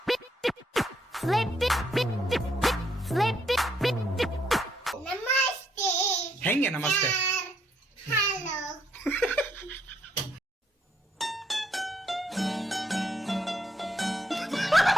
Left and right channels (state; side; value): normal; both; correlation 0.73